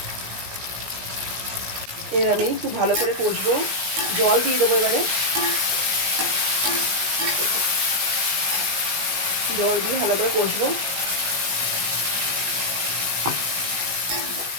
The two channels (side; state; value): left; late; 17 ms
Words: এর আমি খুব ভালো করে কষবো, জল দিয়ে দেবো এবারে। জল দিয়ে ভালো করে কষবো।